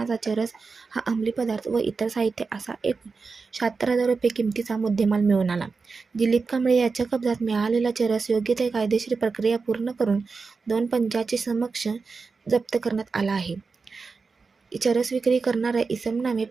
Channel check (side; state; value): left; quieter; 4.6 dB